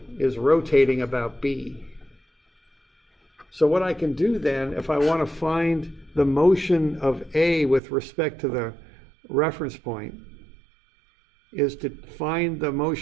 is rotating about B. So what I can do then, if I want to find the motion of A with respect to the reference point, is to find the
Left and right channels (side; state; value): left; drops out; at 7.8 s